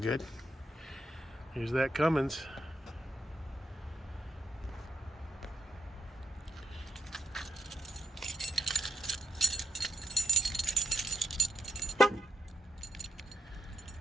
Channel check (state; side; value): normal; both; correlation 0.80